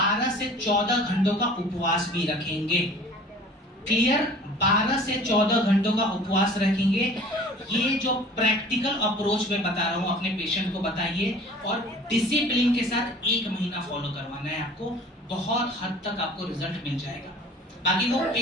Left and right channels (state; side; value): normal; both; correlation 0.46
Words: से 14 घंटों का उपवास भी रखेंगे। क्लियर? 12 से 14 घंटों का उपवास रखेंगे। ये जो प्रैक्टिकल अप्रोच मैं बता रहा हूँ अपने पेशेंट को बताइए, और डिसिप्लिन के साथ 1 महीना फॉलो करवाना है आपको। बहुत हद तक आपको रिजल्ट मिल जाएगा। बाकी वो